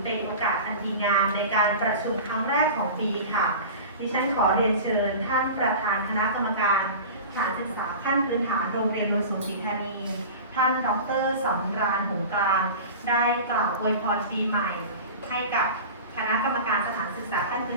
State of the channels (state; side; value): inverted; both; correlation -0.34